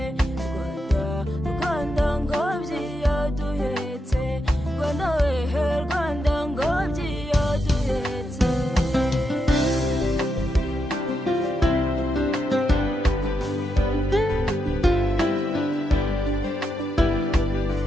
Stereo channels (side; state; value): both; normal; correlation 0.83